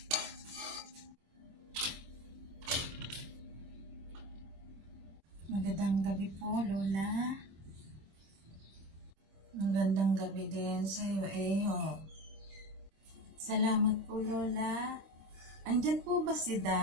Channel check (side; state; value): left; late; 26 ms